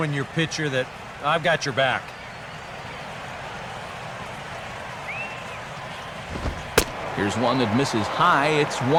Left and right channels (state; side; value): identical; both; correlation 1.00